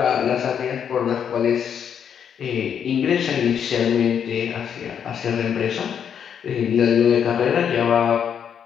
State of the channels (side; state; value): right; quieter; 8.1 dB